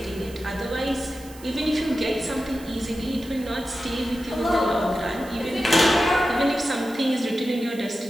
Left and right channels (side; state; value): right; noise; hiss, 20 dB below the sound